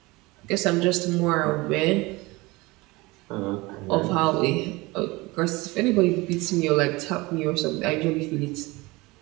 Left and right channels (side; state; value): left; quieter; 22.7 dB